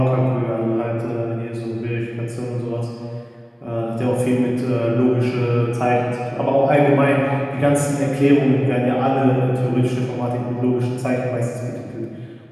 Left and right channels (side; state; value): both; identical; correlation 1.00